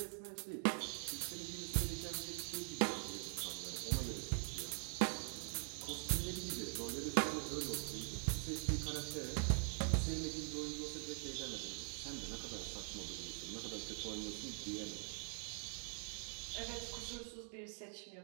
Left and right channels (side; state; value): left; silent; digital silence